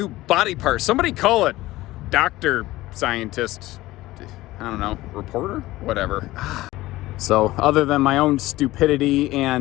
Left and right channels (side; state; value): right; quieter; 17.6 dB